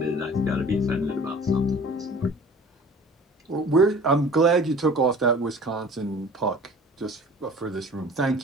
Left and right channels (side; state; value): both; normal; correlation 0.45